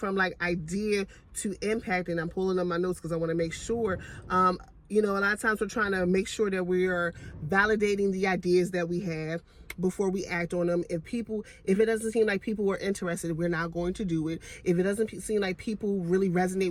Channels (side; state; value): both; identical; correlation 1.00